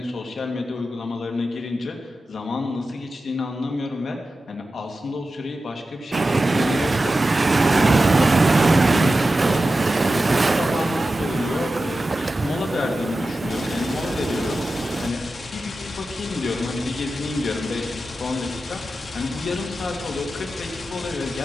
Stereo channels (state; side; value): normal; both; correlation 0.93